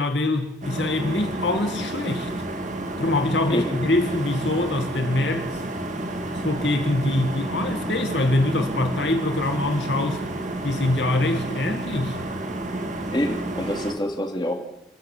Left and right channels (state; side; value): normal; both; correlation 0.63